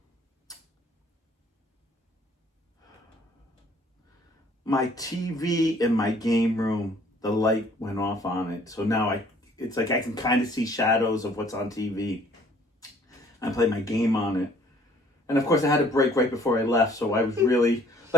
my TV in my game room, the light went off on it, so now it's like I can kind of see shadows of what's on TV. I play my game on it, and of course I had a break right before I left, so I was really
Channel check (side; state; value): both; normal; correlation 0.58